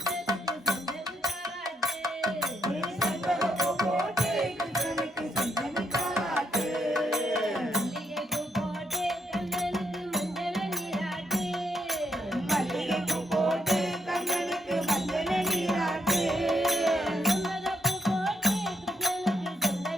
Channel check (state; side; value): normal; both; correlation 0.77